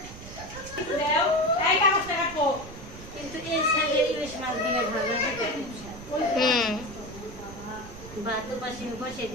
কিন্তু এই সাইডে ইলিশ মাছ দিয়ে ভাজা ভাত পাশে বসিয়ে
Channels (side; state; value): right; noise; rumble, 15 dB below the sound